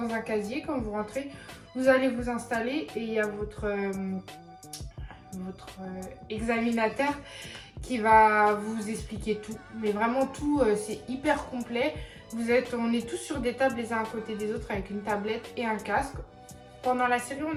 un casier. Quand vous rentrez, vous allez vous installer et il y a votre examinateur qui va vous expliquer tout, mais vraiment tout, c'est hyper complet. On est tous sur des tables les uns à côté des autres avec une tablette et un casque. pendant la série, on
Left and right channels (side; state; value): both; identical; correlation 1.00